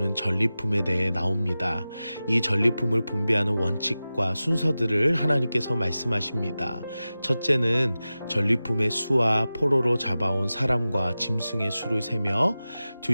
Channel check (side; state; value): both; inverted; correlation -0.95